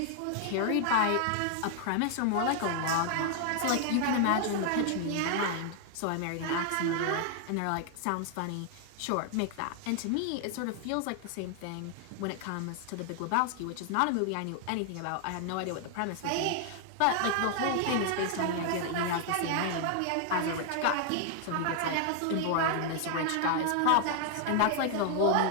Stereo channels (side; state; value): both; different; correlation 0.00